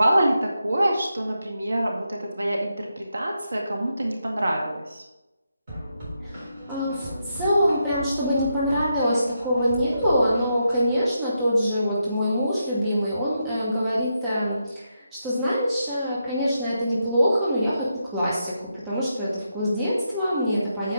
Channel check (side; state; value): both; inverted; correlation -0.83